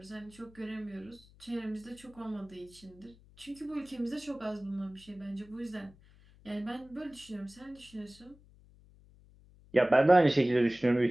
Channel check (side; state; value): left; noise; hum, 25 dB below the sound